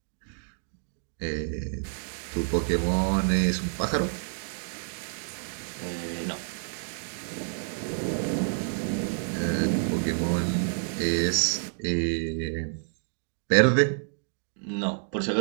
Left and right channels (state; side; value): silent; left; digital silence